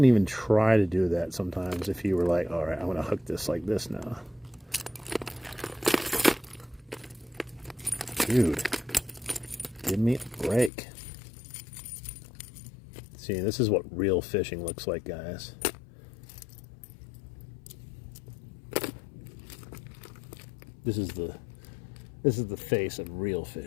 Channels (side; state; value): right; drops out; at 10.7 s